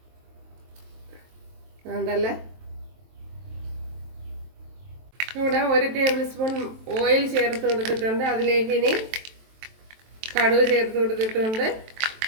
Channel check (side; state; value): left; late; 23 ms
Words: ഉണ്ടല്ലേ, ഇവിടെ 1 ടേബിൾ സ്പൂൺ ഓയിൽ ചേർത്ത് കൊടുത്തിട്ടുണ്ട്. അതിലേക്ക് ഇനി കടുക് ചേർത്ത് കൊടുത്തിട്ടുണ്ട്.